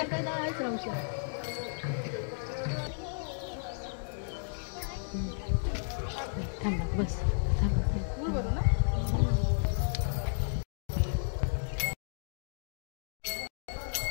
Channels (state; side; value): silent; right; digital silence